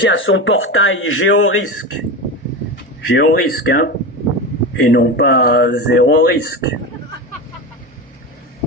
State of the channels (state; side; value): normal; both; correlation 0.22